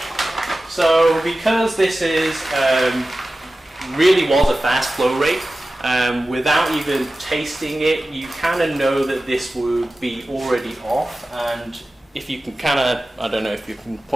So because this is really was a fast flow rate, without even tasting it, you kind of know that this would be already off. And if you can kind of, I don't know if you can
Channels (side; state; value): both; normal; correlation 0.95